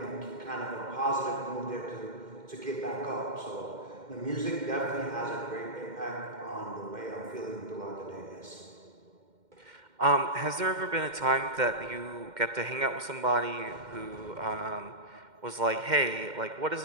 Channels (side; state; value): left; late; 2.1 ms